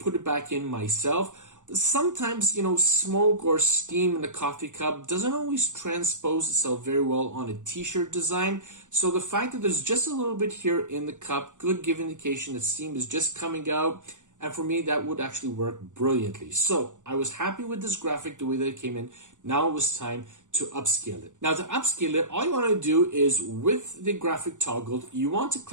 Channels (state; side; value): late; left; 0.86 ms